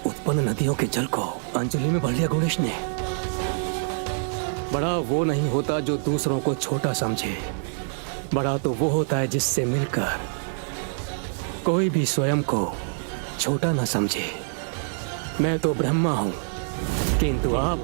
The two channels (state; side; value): silent; left; digital silence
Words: उत्पन्न नदियों के जल को अंजलि में भर लिया गणेश ने। बड़ा वो नहीं होता जो दूसरों को छोटा समझे, बड़ा तो वो होता है जिससे मिलकर कोई भी स्वयं को छोटा न समझे। मैं तो ब्रह्मा हूँ, किंतु